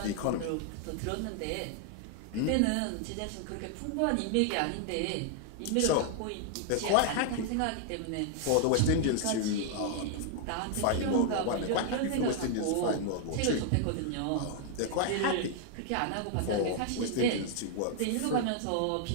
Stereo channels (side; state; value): both; different; correlation 0.00